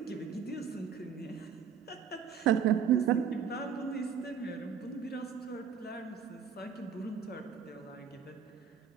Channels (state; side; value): quieter; left; 7.5 dB